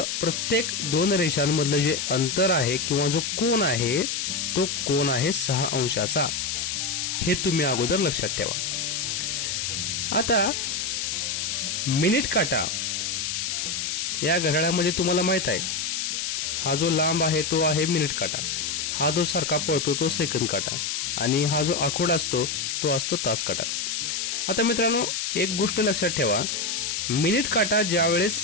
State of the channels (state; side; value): noise; left; hiss, 1 dB below the sound